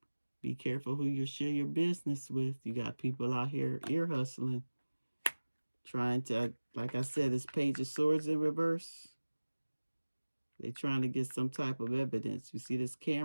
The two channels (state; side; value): inverted; both; correlation -1.00